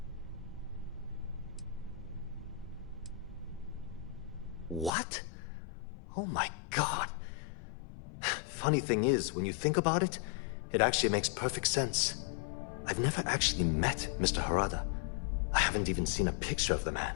What? Oh my god. Funny thing is, when you think about it, it actually makes perfect sense. I've never actually met Mr. Harada. I haven't even seen a picture of the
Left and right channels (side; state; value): right; drops out; at 4.9 s